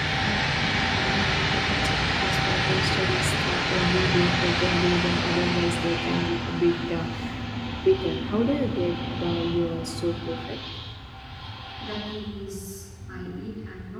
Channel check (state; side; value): identical; both; correlation 1.00